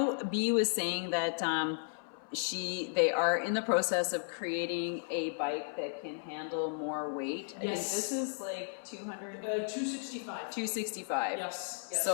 B was saying that they are in the process of creating a bike that can handle more weight. I think this is like 265. 265. Yes.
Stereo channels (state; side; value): silent; right; 55 dB below the other